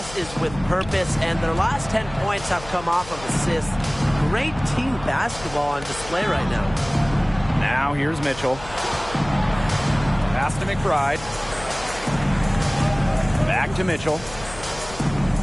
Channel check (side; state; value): left; noise; hum, 15 dB below the sound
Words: is with purpose, and their last 10 points have come off of assists. Great team basketball on display right now. Now here's Mitchell. Pass to McBride. Back to Mitchell.